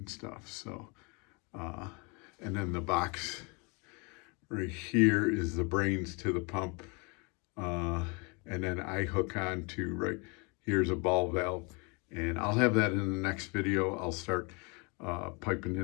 stuff. So, and then the box right here is the brains to the pump. And then I hook on to right here's a ball valve, and I'll have that in the next video. I'll start piping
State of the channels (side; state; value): right; quieter; 31.0 dB